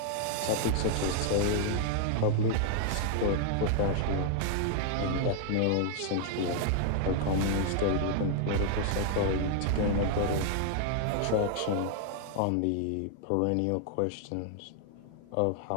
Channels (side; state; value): both; different; correlation 0.00